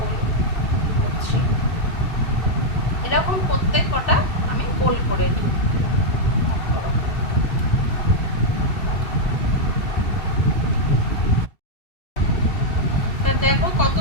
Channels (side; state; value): right; late; 2.7 ms